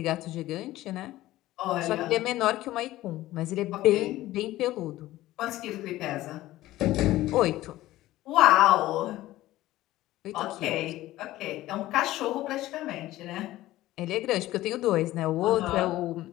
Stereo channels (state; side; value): quieter; right; 16.0 dB